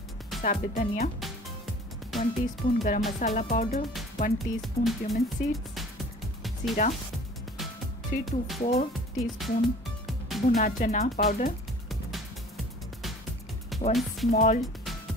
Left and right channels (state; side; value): normal; both; correlation 0.47